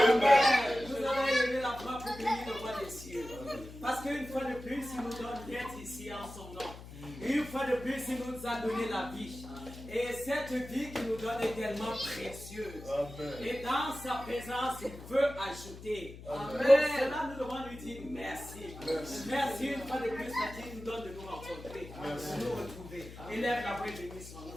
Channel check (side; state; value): left; noise; hum, 14 dB below the sound